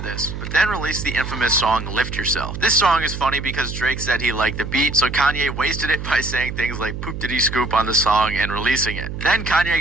but then released the infamous song Lift Yourself. This song is funny because Drake said he liked the beat, so Kanye wasted it by saying things like poop diddy scoop on the song and releasing it. Then Kanye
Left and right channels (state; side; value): noise; right; hum, 7 dB below the sound